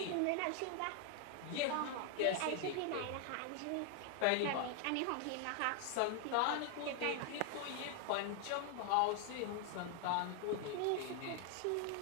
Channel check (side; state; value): both; different; correlation 0.01